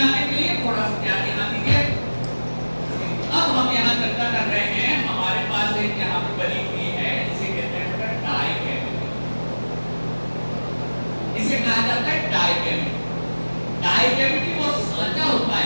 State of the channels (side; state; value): both; inverted; correlation -1.00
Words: के लिए थोड़ा सा ध्यान यहाँ दीजिए। अब हम यहाँ चर्चा कर रहे हैं, हमारे पास एक यहाँ पे बनी हुई है, इसे कहते हैं डाई कैविटी। इसे कहा जाता है डाई कैविटी। डाई कैविटी वो सांचा होता